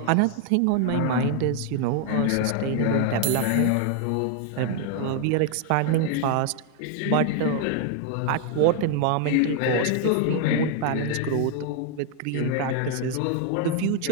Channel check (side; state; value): both; different; correlation 0.00